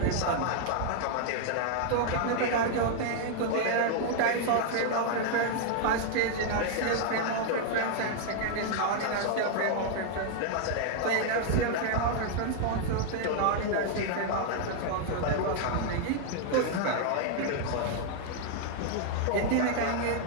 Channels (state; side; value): different; both; correlation 0.00